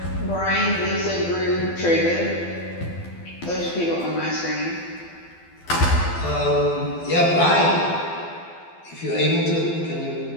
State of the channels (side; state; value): right; late; 12 ms